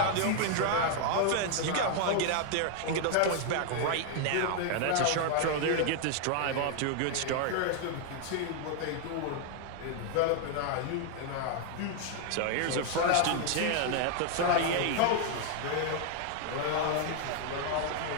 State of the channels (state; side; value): different; both; correlation 0.00